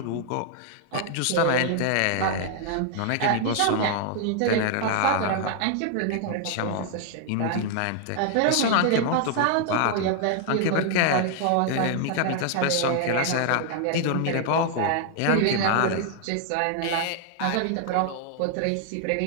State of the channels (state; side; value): different; both; correlation 0.00